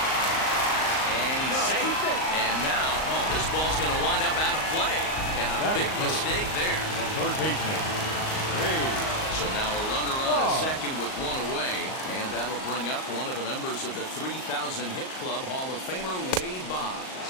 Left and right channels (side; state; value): right; late; 38 ms